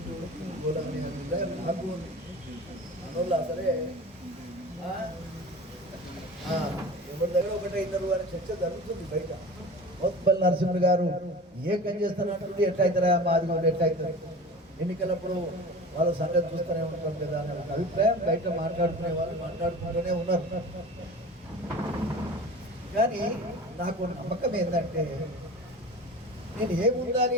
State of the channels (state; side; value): normal; both; correlation 0.36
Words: పోదామని నాకు ఉంది అందువల్ల సరే ఎవరి దగ్గర ఒకటే ఇద్దరు అని చర్చ జరుగుతుంది బయట. మోత్పల్లి నరసింహ గారు ఏకం చేస్తానంటుంది, ఎట్లా అవుతారా మాది కూడా ఎట్లా అవుతుంది, ఎన్నికలప్పుడు వాళ్ళ సంగతి చూస్తూనే ఉంటాం కదా అనే ఒక అభిప్రాయం బయట మాట్లాడుకునే వాళ్ళు మాట్లాడుకుంటూనే ఉన్నారు. కానీ నాకు నమ్మకం ఏంటంటే నేను